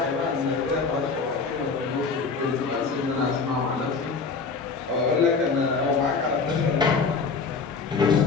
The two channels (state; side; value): quieter; right; 4.8 dB